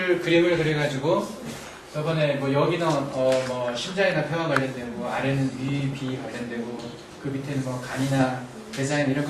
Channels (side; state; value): both; identical; correlation 1.00